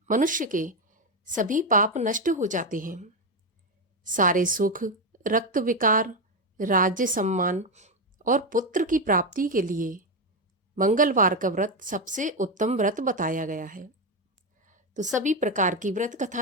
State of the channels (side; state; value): both; normal; correlation 0.09